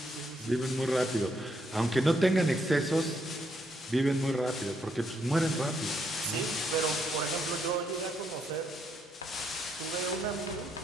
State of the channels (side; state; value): both; normal; correlation 0.75